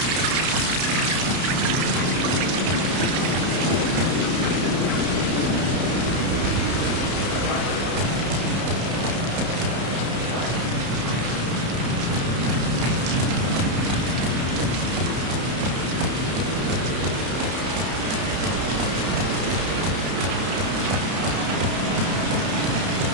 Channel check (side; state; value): left; late; 31 ms